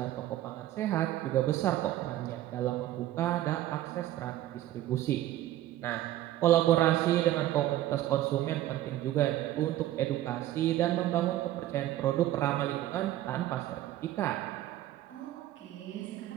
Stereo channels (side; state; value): left; quieter; 14.0 dB